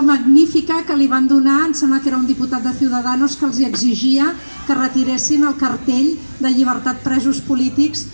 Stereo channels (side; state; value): both; inverted; correlation -1.00